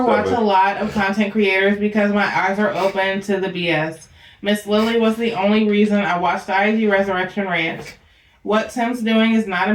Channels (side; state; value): both; identical; correlation 1.00